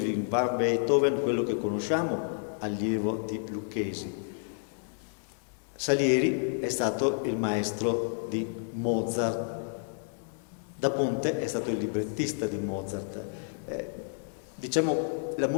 van Beethoven, quello che conosciamo, allievo di Lucchesi. Salieri è stato il maestro di Mozart. Da Ponte è stato il librettista di Mozart. Diciamo, la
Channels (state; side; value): silent; right; 58 dB below the other